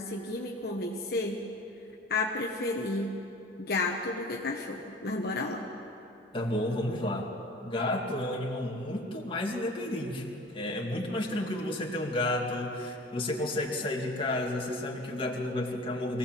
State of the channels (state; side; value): normal; both; correlation 0.43